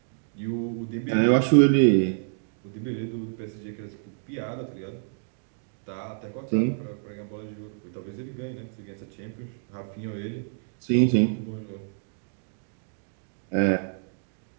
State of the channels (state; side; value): silent; left; digital silence